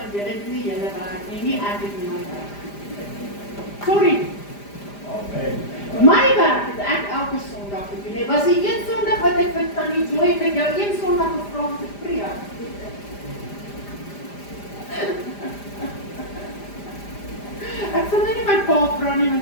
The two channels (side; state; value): right; late; 5.0 ms